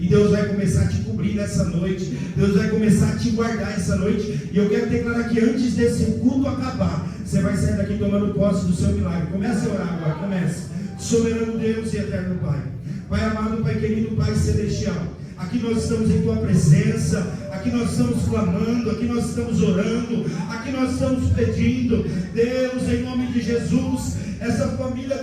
Deus vai começar a te cobrir nessa noite, Deus vai começar a te guardar essa noite. E eu quero declarar que antes desse culto acabar, você vai sair daqui tomando posse do seu milagre. Comece a orar agora, comece. Soberano Deus e eterno Pai, Pai amado, Pai querido, Pai celestial, aqui nós estamos em Tua presença, aqui nós estamos clamando, aqui nós estamos orando, aqui nós estamos pedindo, Deus, em nome de Jesus, essa família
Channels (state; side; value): identical; both; correlation 1.00